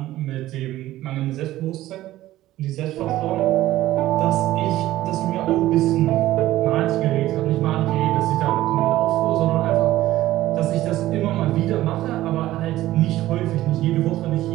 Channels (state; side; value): quieter; left; 15.2 dB